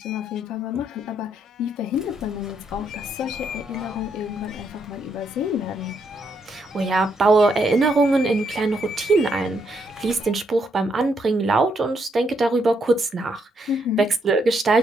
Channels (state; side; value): normal; both; correlation 0.76